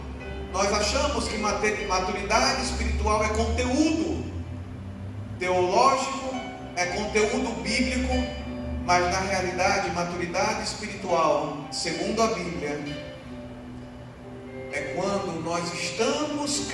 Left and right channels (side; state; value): both; identical; correlation 1.00